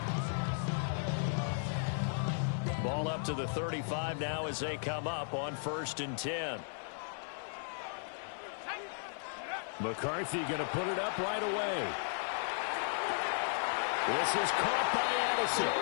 Ball up to the 35 now as they come up on 1st and 10. McCarthy going to put it up right away. This is caught by Addison.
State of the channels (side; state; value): right; silent; digital silence